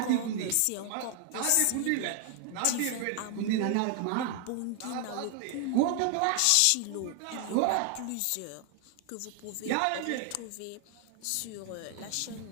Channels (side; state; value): both; different; correlation 0.00